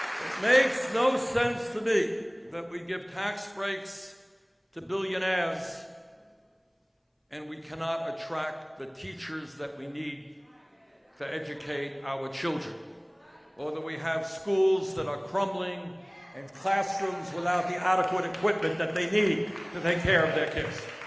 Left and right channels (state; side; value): identical; both; correlation 1.00